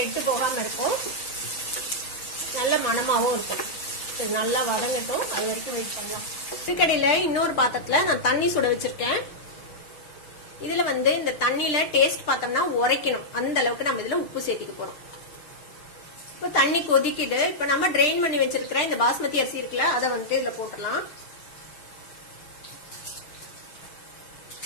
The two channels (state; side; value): late; right; 6.6 ms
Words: போகாம இருக்கும், நல்ல மணமாவும் இருக்கும். இது நல்லா வதங்கட்டும், அது வரைக்கும் வெயிட் பண்ணலாம். இதுக்கடையில இன்னொரு பாத்திரத்துல நான் தண்ணி சுட வச்சிருக்கேன். இதுல வந்து இந்த தண்ணியில டேஸ்ட் பார்த்தோம்னா உரைக்கணும். அந்த அளவுக்கு நம்ம இதுல உப்பு சேர்த்திக்க போறோம். இப்போ தண்ணி கொதிக்கிட்டு இப்ப நம்ம ட்ரெயின் பண்ணி வச்சிருக்கிற இந்த பாஸ்மதி அரிசி இருக்குல்ல, அதை வந்துட்டு இதுல போட்டுடலாம்.